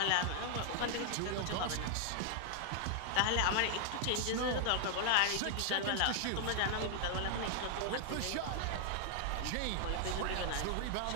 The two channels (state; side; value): different; both; correlation 0.00